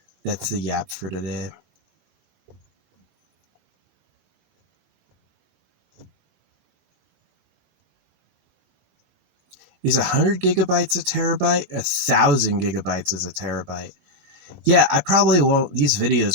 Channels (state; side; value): late; left; 21 ms